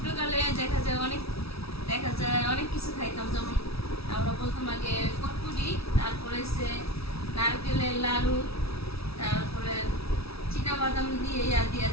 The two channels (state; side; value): late; right; 0.77 ms